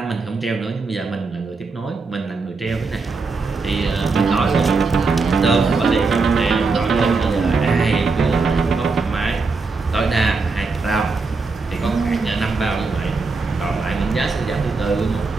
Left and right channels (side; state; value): left; quieter; 4.1 dB